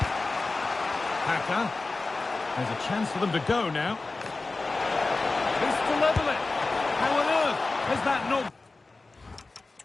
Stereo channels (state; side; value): quieter; right; 3.5 dB